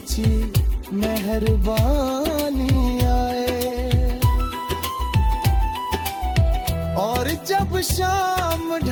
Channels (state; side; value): identical; both; correlation 1.00